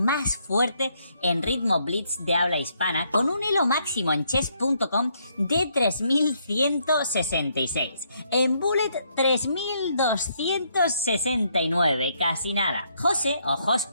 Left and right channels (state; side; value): inverted; both; correlation -0.72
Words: fuerte en ritmo blitz de habla hispana, con un elo máximo en chess.com de 3166. En bullet 3269, casi nada. José, o